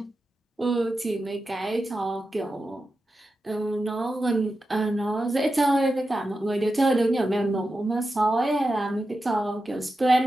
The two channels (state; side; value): normal; both; correlation 0.91